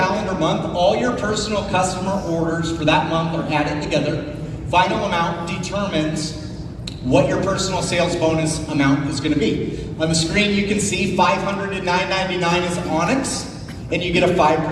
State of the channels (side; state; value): both; identical; correlation 1.00